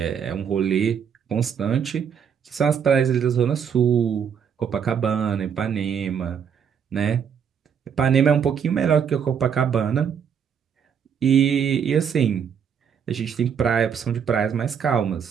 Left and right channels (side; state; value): left; quieter; 7.6 dB